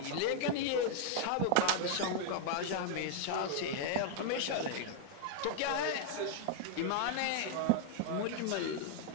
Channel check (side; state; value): both; different; correlation 0.00